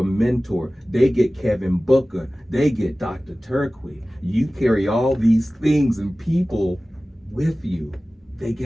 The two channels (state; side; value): normal; both; correlation 0.97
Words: mentor. They get Kevin Booker. They get Dr. Turquie. You carry all these things and people with you. They